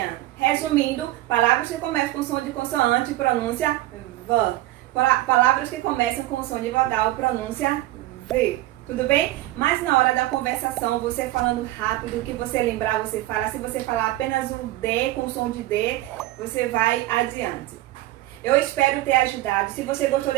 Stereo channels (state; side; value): quieter; left; 16.6 dB